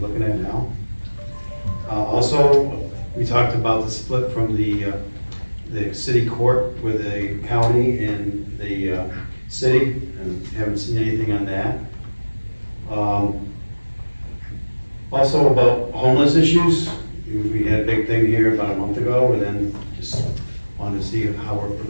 at now. Also, we talked about the split from the city court with the county and the, city, and haven't seen anything on that. Also about homeless issues, we had a big thing here about a month ago, and then just wanted to see how we're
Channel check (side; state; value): both; inverted; correlation -1.00